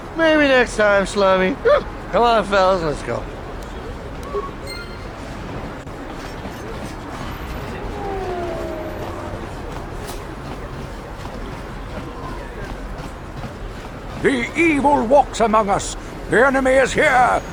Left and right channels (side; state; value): both; identical; correlation 1.00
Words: Maybe next time, slummy. Come on, fellas, let's go. The evil walks among us. The enemy is here.